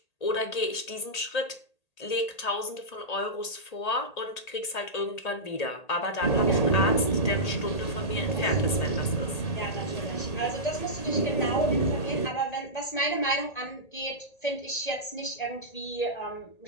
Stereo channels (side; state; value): right; late; 1.8 ms